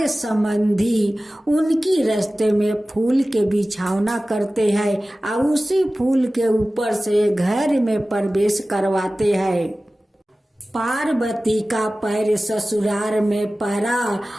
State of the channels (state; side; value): normal; both; correlation 0.96